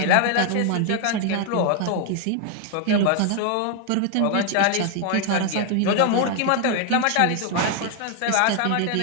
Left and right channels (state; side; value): different; both; correlation 0.01